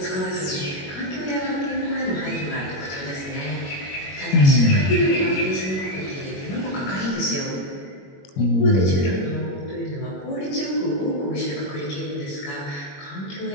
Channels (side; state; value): right; late; 21 ms